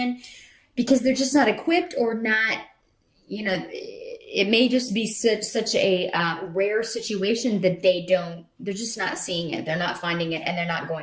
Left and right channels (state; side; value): identical; both; correlation 1.00